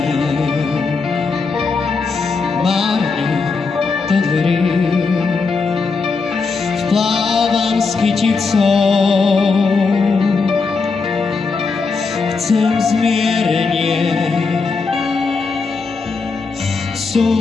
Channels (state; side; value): quieter; right; 4.5 dB